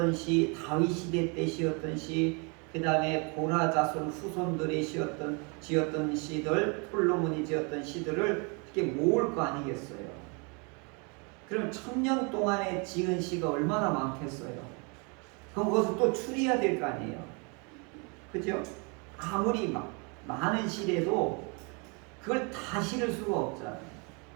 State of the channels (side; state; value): left; quieter; 33.2 dB